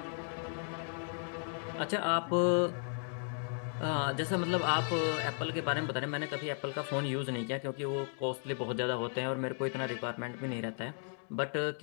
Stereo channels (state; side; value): silent; right; 54 dB below the other